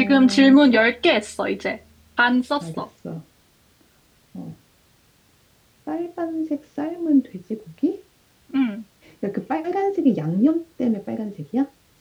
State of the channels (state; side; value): identical; both; correlation 1.00